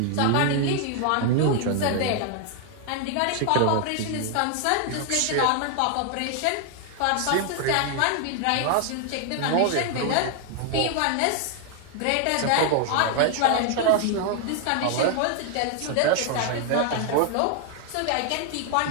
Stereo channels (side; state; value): both; different; correlation 0.00